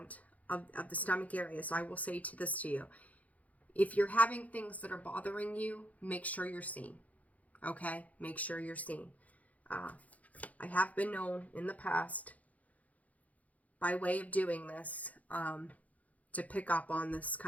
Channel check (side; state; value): right; late; 0.072 ms